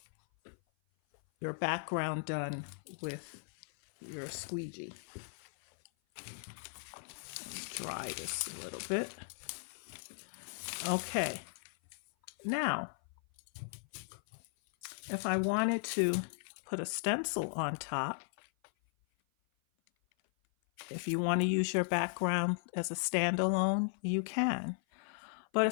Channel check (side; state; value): right; silent; 53 dB below the other